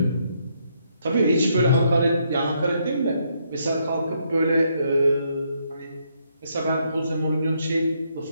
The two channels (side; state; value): both; inverted; correlation -0.74